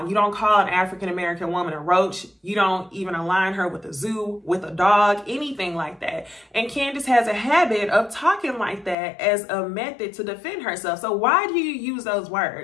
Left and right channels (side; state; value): right; drops out; at 9.0 s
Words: You don't call an African-American woman a roach. You don't even align her with a zoo, with a dog, anything like that. And Candiace has a habit of talking like that as a method to defend herself. So why do you use those